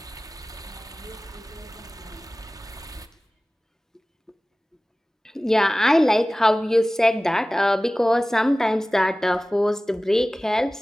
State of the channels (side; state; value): both; normal; correlation 0.97